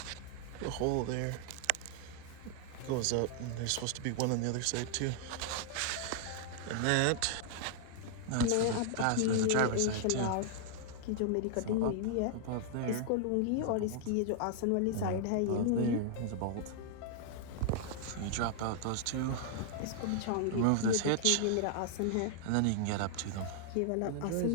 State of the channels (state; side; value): different; both; correlation -0.01